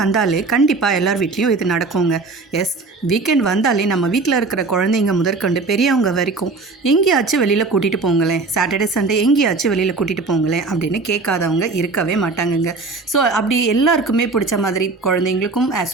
கண்டிப்பாக எல்லார் வீட்லேயும் இது நடக்குங்க. எஸ், வீக்கெண்ட் வந்தாலே நம்ம வீட்டில் இருக்கிற குழந்தைங்க முதற்கொண்டு பெரியவங்க வரைக்கும் எங்கேயாச்சும் வெளியில் கூட்டிகிட்டு போங்களேன், சாட்டர்டே சண்டே எங்கேயாச்சும் வெளியில் கூட்டிகிட்டு போங்களேன் அப்படின்னு கேட்காதவங்க இருக்கவே மாட்டாங்கங்க. ஸோ அப்படி எல்லாருக்குமே பிடிச்ச மாதிரி, குழந்தைங்களுக்கும்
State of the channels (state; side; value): quieter; left; 3.8 dB